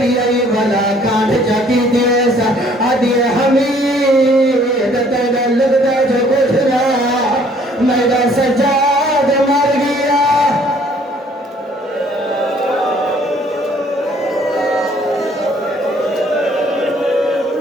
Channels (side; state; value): both; normal; correlation 0.60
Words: آئی والا کانٹ جاکی دیسا آدھے حمید تیرے لگتا جو کچھ رہا میرا